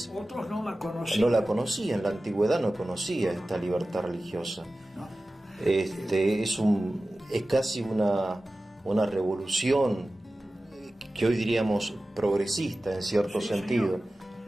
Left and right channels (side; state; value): both; normal; correlation 0.96